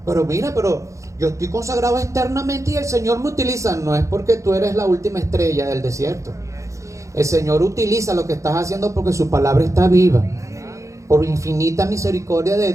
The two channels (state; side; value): late; left; 0.15 ms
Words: mira, pero yo estoy consagrado externamente y el Señor me utiliza. No es porque tú eres la última estrella del desierto. El Señor utiliza lo que estás haciendo porque su palabra está viva. Por infinita misericordia de